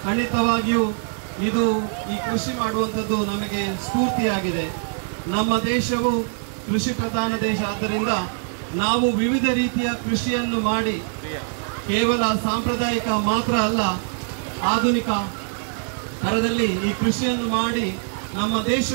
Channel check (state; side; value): silent; left; 56 dB below the other